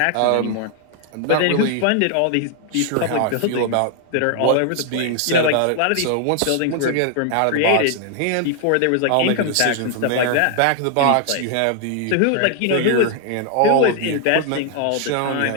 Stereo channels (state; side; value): different; both; correlation 0.00